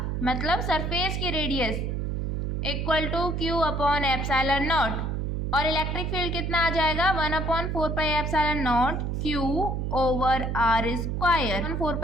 मतलब सरफेस की रेडियस =Q/ε0। और इलेक्ट्रिक फील्ड कितना आ जाएगा, 1/4πε0 Q/r²।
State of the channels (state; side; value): noise; right; hum, 1 dB below the sound